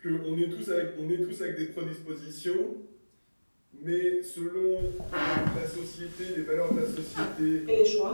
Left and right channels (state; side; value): inverted; both; correlation -1.00